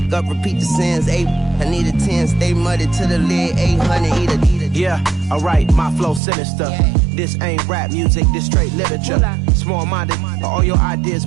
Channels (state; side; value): drops out; left; at 6.2 s